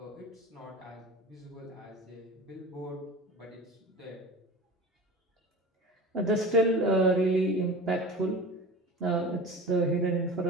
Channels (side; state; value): both; normal; correlation 0.35